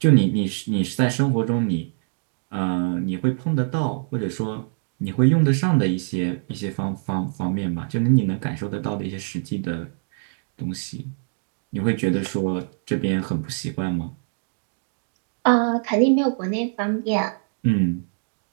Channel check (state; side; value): silent; left; digital silence